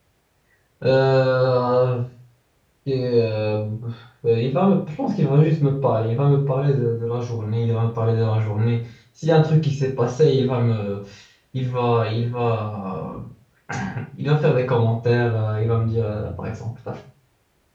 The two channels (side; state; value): both; identical; correlation 1.00